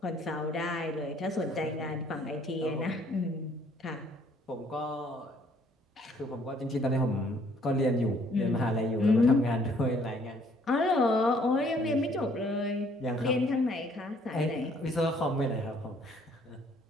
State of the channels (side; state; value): both; normal; correlation 0.62